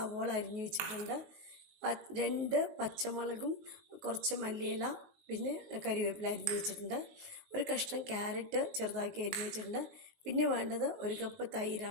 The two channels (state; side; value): late; left; 19 ms